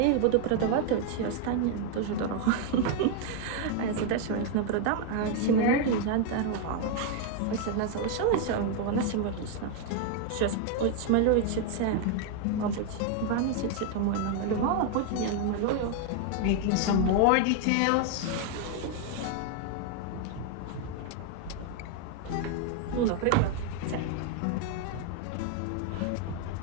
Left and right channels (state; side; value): different; both; correlation 0.01